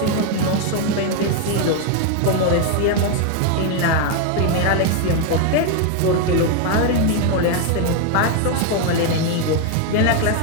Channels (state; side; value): different; both; correlation 0.01